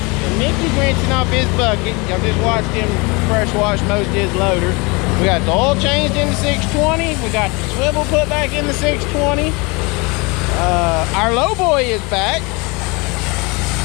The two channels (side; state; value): right; quieter; 27.5 dB